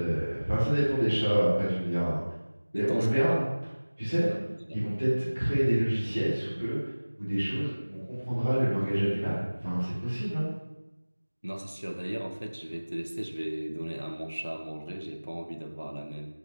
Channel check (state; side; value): inverted; both; correlation -1.00